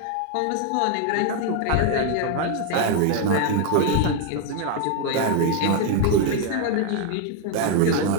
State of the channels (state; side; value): different; both; correlation 0.00